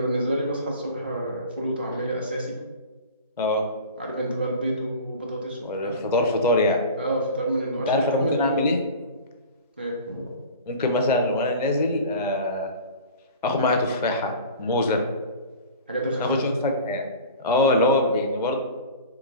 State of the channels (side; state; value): both; inverted; correlation -0.38